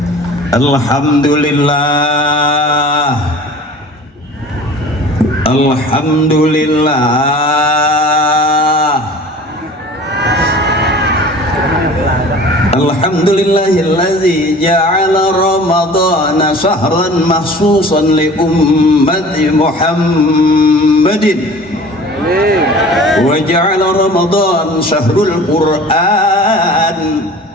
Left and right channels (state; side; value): normal; both; correlation 0.43